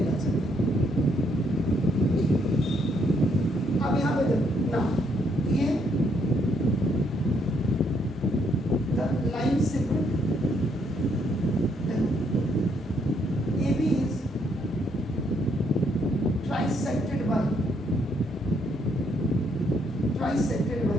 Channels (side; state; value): both; normal; correlation 0.72